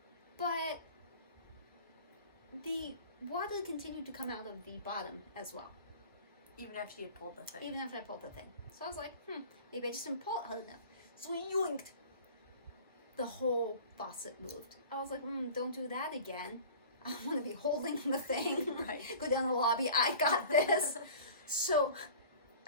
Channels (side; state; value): both; inverted; correlation -0.41